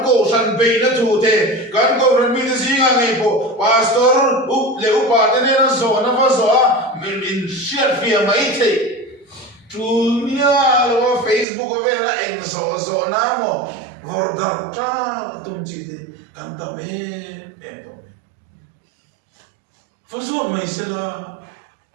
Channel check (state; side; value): drops out; left; at 11.5 s